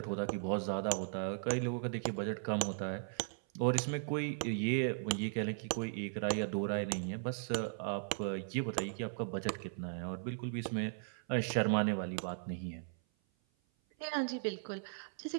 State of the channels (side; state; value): left; silent; 53 dB below the other